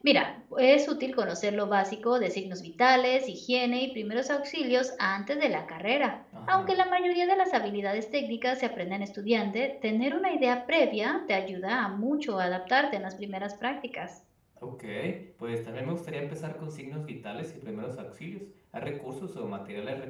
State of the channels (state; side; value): identical; both; correlation 1.00